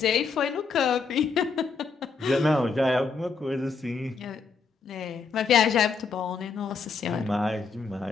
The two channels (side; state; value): right; quieter; 4.9 dB